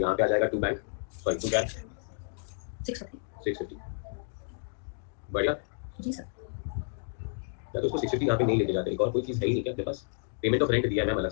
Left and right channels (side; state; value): right; silent; digital silence